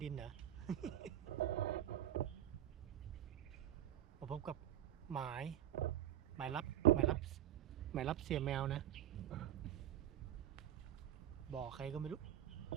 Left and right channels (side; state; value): left; quieter; 12.0 dB